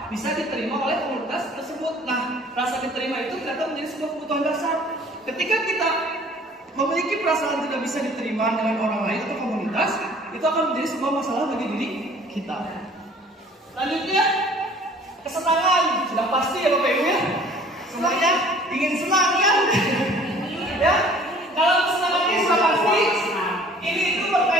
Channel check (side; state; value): both; normal; correlation 0.52